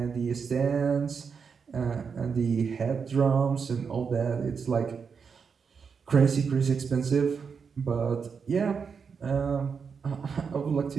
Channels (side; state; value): left; quieter; 6.0 dB